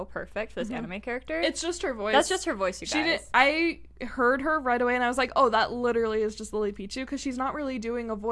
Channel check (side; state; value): both; identical; correlation 1.00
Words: perfect for this anime character. It's just her voice. That's just her voice, you guys. I heard her right away and I was like, oh, that literally is just Lilypichu, because she's not really doing a